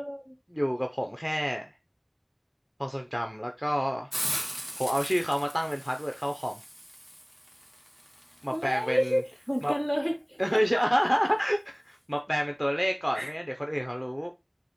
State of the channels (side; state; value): both; identical; correlation 1.00